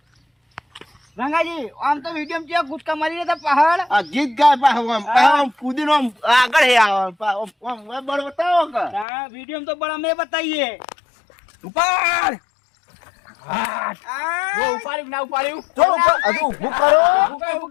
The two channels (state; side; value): drops out; right; at 9.1 s